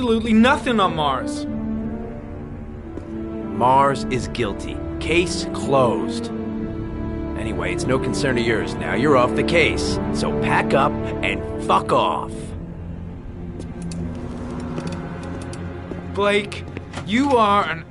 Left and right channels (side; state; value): both; identical; correlation 1.00